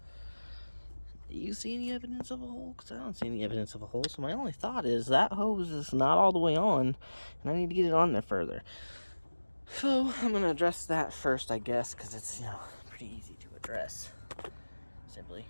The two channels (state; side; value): inverted; both; correlation -1.00